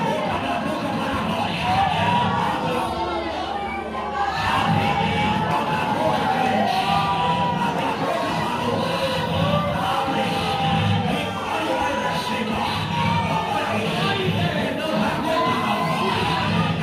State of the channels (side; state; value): both; identical; correlation 1.00